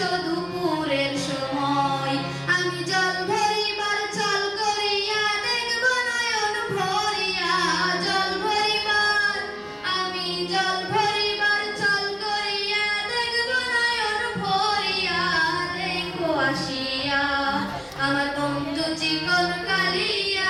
দুপুরের সময়। আমি জল ভরিবার চল করিয়া দেখব নয়ন ভরিয়া, জল ভরিবার আমি জল ভরিবার চল করিয়া দেখব নয়ন ভরিয়া। দেখো আসিয়া আমার বন্ধু চিকন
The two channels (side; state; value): both; identical; correlation 1.00